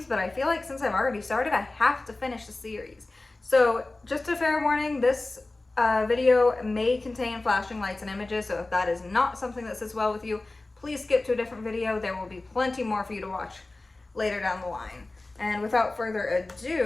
but I feel like since I've already started, I have to finish the series. So just a fair warning, this video may contain flashing lights and images, so if that is not something that sits well with you, please skip to a different video. There will be plenty more for you to watch later down the line. And without further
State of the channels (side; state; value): right; quieter; 3.0 dB